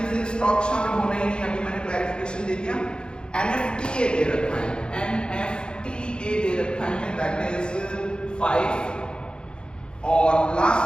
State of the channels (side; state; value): right; late; 0.050 ms